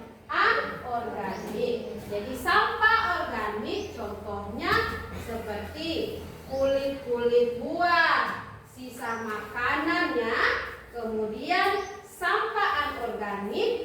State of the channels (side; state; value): both; identical; correlation 1.00